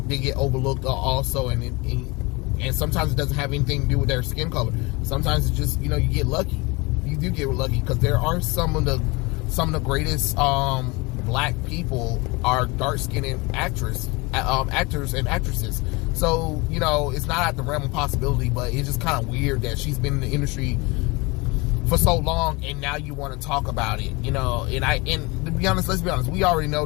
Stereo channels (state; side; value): quieter; right; 25.6 dB